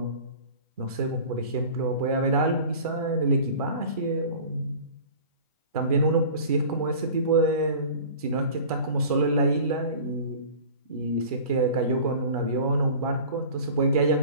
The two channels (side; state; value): both; inverted; correlation -0.40